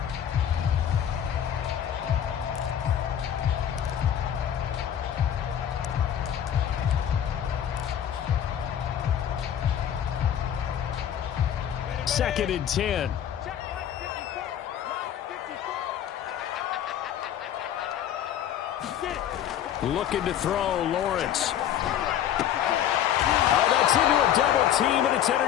Second and 10. Looking to throw, Lawrence. Oh, that's into a double team, and it's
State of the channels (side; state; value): right; quieter; 10.1 dB